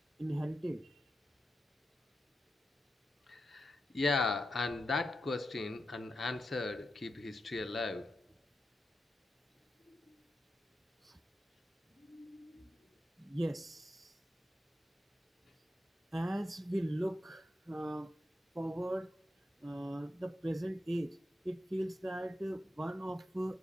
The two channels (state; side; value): normal; both; correlation 0.88